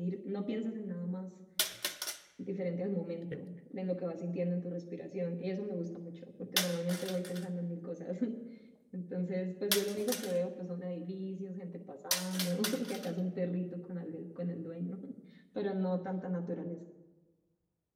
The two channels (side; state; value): both; identical; correlation 1.00